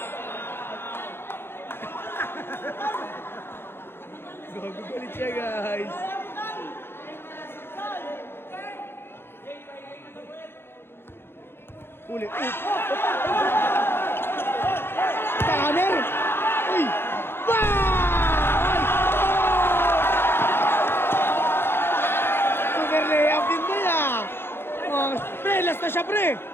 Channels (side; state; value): right; late; 0.11 ms